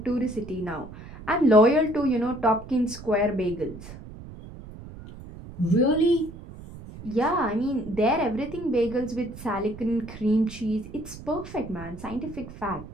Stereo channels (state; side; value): noise; right; rumble, 14 dB below the sound